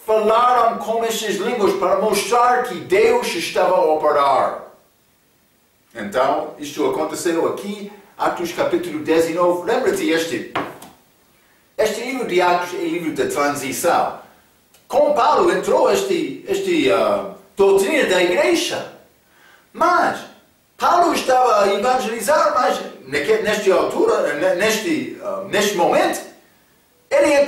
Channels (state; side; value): identical; both; correlation 1.00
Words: falaram com estas línguas para mostrar que Deus estava a operar. Então, isto aconteceu aqui, Atos capítulo 19. Lembra-te, este livro de Atos é livro da transição. Com Paulo entrou esta doutrina da igreja. Mas Paulo estava a evangelizar, mas nesta altura, neste momento, ele